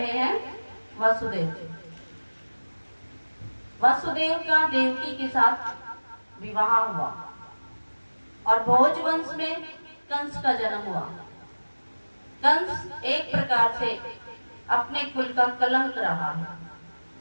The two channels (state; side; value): inverted; both; correlation -1.00